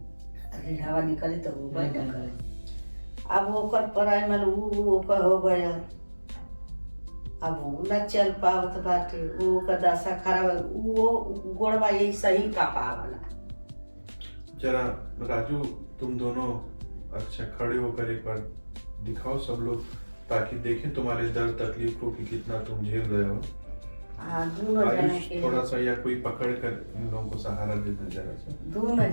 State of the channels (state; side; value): inverted; both; correlation -1.00